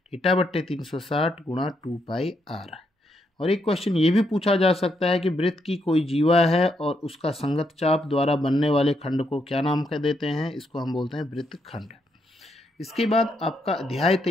θ/360 गुणा 2πr। और एक क्वेश्चन ये भी पूछा जा सकता है कि वृत्त की कोई जीवा है और उसका संगत चाप द्वारा बनने वाले खंड को क्या नाम कर देते हैं। इसको हम बोलते हैं वृत्तखंड। इसके बाद आपका अध्याय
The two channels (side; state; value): both; normal; correlation 0.78